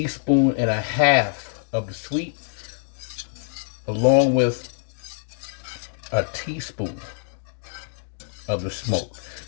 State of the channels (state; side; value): silent; right; digital silence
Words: and a half of the sweet, along with a teaspoon of the smoke.